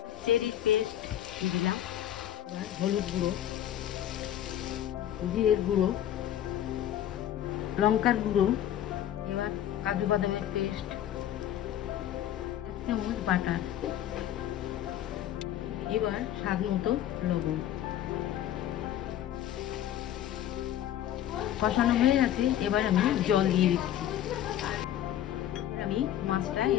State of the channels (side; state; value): right; quieter; 11.4 dB